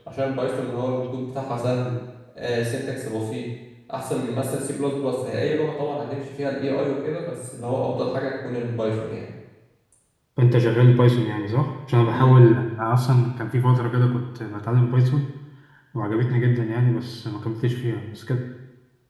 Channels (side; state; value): both; identical; correlation 1.00